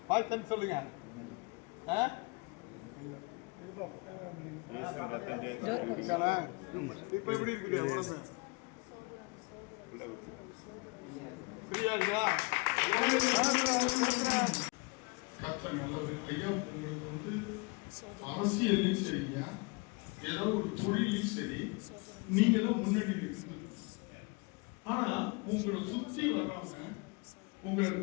பார்த்து சொல்லுங்க. இப்ப எப்படி இருக்குது உடம்பு? சரியா இருக்கா? ஐயா உங்களுக்கு வந்து அரசியல்லையும் சரியா ஏதோ ஒரு தொழிலையும் சரி நீங்க தான் முன்னாடி இருக்கு. ஆனா உங்களை சுற்றி வர்றவங்க உங்களை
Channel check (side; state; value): right; quieter; 29.2 dB